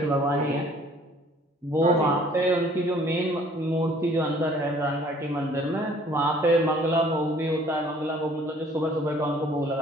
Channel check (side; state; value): both; normal; correlation 0.56